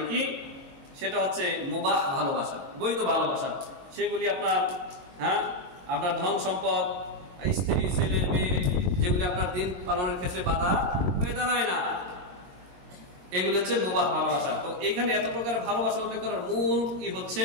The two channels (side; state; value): left; late; 21 ms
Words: কি সেটা হচ্ছে মুবাহ ভালোবাসা, বৈধ ভালোবাসা। সেগুলি আপনার ধন সম্পদ, স্ত্রী, ছেলে, মেয়ে, যেগুলি আপনার দিন পালনের ক্ষেত্রে বাধা হয়ে দাঁড়ায় না, এগুলি হচ্ছে মুবাহ ভালোবাসা। তো এখানে এত প্রকারের ভালোবাসা উল্লেখ করার মূল